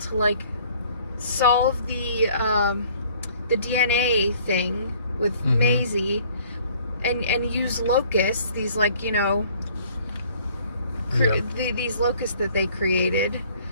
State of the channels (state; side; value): inverted; both; correlation -0.56